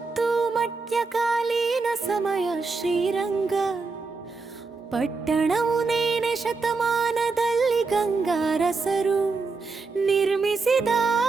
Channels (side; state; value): left; quieter; 4.2 dB